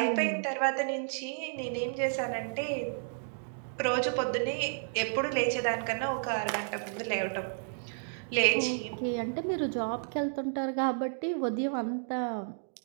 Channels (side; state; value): left; silent; digital silence